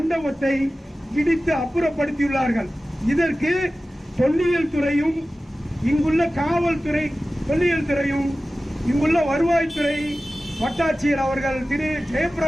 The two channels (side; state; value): both; normal; correlation 0.96